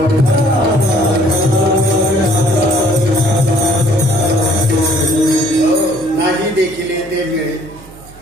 नाही देखील ते मिळे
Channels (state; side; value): noise; right; hum, 21 dB below the sound